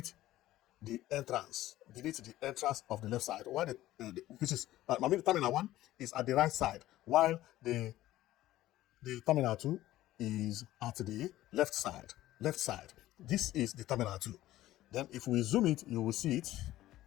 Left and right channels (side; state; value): right; quieter; 15.1 dB